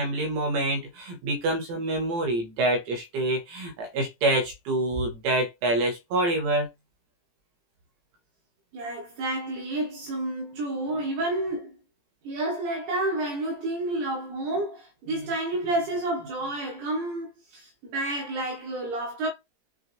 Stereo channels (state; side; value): late; left; 17 ms